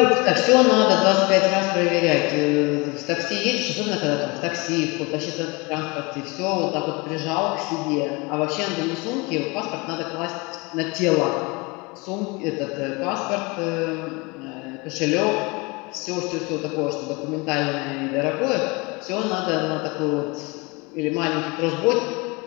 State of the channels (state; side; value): quieter; right; 26.7 dB